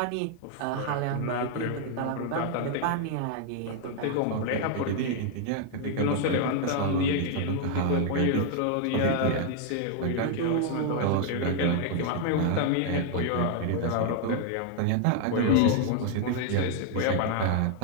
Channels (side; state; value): both; different; correlation 0.00